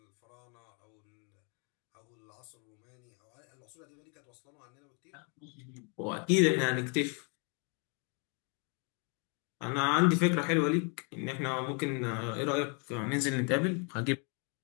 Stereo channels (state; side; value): quieter; right; 37.0 dB